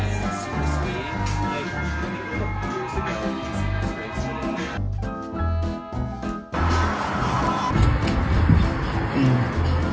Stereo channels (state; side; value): identical; both; correlation 1.00